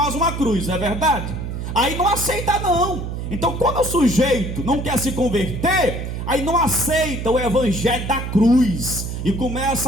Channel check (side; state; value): right; noise; hum, 5 dB below the sound